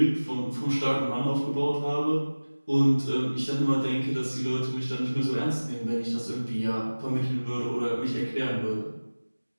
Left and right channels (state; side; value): inverted; both; correlation -1.00